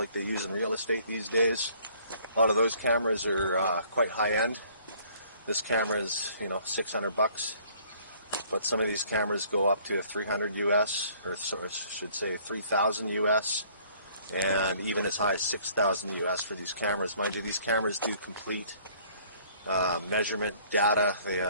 they use in real estate these days. A lot of those cameras are quite high end. This camera is, $600, but some of these cameras go up to 300 US, or so I should say 3,000 US, and even as high as 6,000 US for these cameras. Mind you, these cameras do complete measurement data. They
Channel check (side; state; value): both; inverted; correlation -0.58